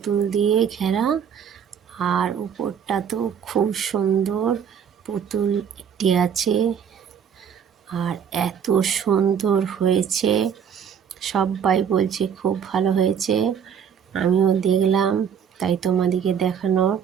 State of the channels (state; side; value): quieter; left; 7.8 dB